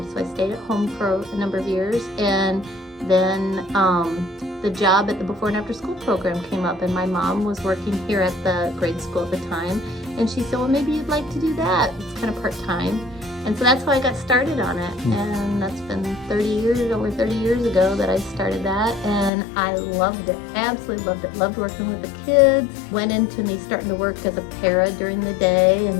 so I stayed at home for a number of years. And then the job at the before and after school program came up, and my mom was working here at the grade school at the time, and she said, well, maybe you'd like to do that. It's kind of part-time. And so that's how I got started on it. And that's been over 30 years ago that I started that, and I loved it, absolutely loved it. Loved working with the kids. Went into me starting to work as a para during the day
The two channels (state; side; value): drops out; right; at 19.3 s